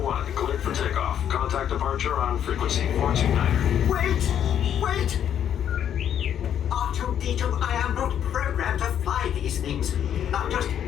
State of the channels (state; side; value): quieter; right; 9.6 dB